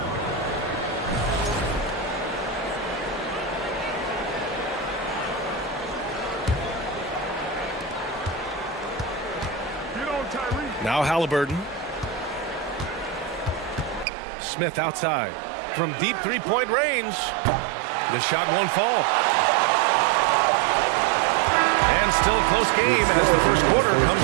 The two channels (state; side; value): drops out; left; at 14.1 s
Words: Now Halliburton. Smith outside. From deep three-point range. The shot won't fall. And still a close game as the first quarter